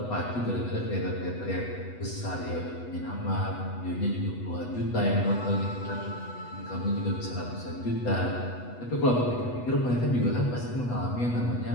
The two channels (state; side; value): late; right; 8.1 ms